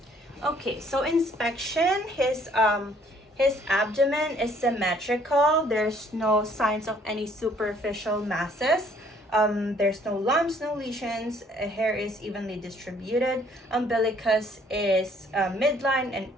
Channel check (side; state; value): both; normal; correlation 0.61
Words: Okay, so inspection, his abdomen is symmetrical. There's no signs of any superficial masses. There's no lumps, no lesions. Hair is evenly distributed. Umbilicus is midline and